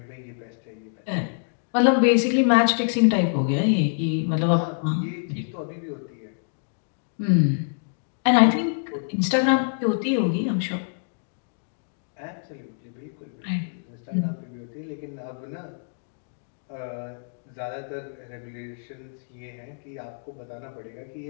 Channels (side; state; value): right; silent; digital silence